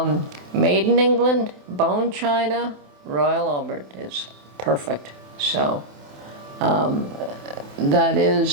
made in England, bone china, Royal Albert is perfect. So that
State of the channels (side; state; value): left; late; 27 ms